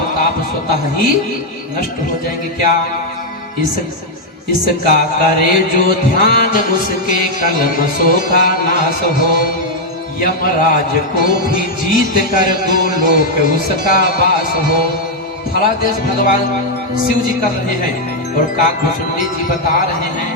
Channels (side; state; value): both; normal; correlation 0.00